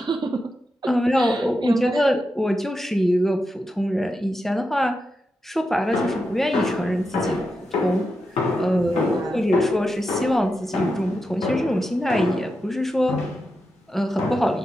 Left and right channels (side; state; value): both; normal; correlation 0.88